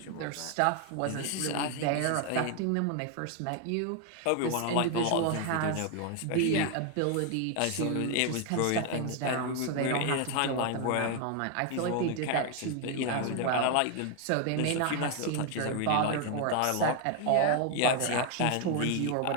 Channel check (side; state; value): both; different; correlation 0.01